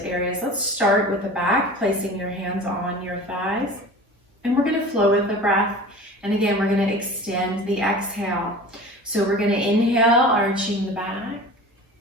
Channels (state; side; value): normal; both; correlation 0.38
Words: areas. Let's start with the back, placing your hands on your thighs. And we're going to flow with the breath. And again, we're going to extend the exhale. So we're going to inhale, arching the back.